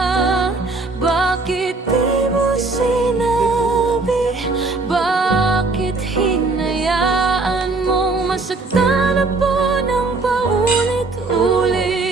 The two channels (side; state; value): left; quieter; 3.6 dB